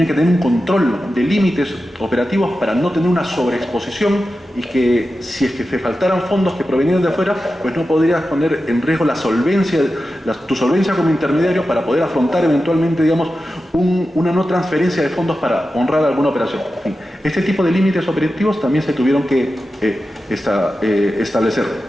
control de límites operativos para no tener una sobreexposición y que si es que te faltaran fondos que provenían de afuera, pues no podrías poner en riesgo tu solvencia como intermediario para poder afrontar eventualmente, digamos, una no transferencia de fondos para honrar alguna operación. En fin, este tipo de límites operativos también se tuvieron que establecer.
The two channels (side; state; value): both; normal; correlation 0.92